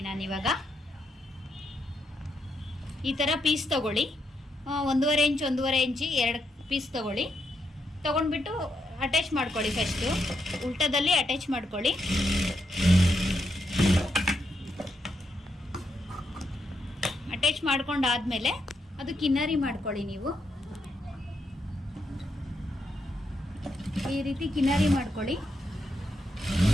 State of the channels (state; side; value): normal; both; correlation 0.81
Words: ನಾನಿವಾಗ. ಈ ಥರ ಪೀಸ್ ತಗೊಳ್ಳಿ, 1.5 ಇಂಚ್ 1.5 ಇಂಚಿ 2 ಪೀಸ್ ತಗೊಳ್ಳಿ. ತೊಗೊಂಡ್ಬಿಟ್ಟು ಅಟ್ಯಾಚ್ ಮಾಡ್ಕೊಳ್ಳಿ. ಫಸ್ಟು ಉಲ್ಟದಲ್ಲಿ ಅಟ್ಯಾಚ್ ಮಾಡ್ಕೊಳ್ಳಿ. ಅಟ್ಯಾಚ್ ಮಾಡ್ಕೊಂಡಾದ್ಮೇಲೆ ಅದು ಕಿನ್ನರಿ ಮಾಡ್ಕೊಳ್ಳಿ. ನೀವು ಈ ರೀತಿ ಕಿನ್ನರಿ ಮಾಡ್ಕೊಳ್ಳಿ.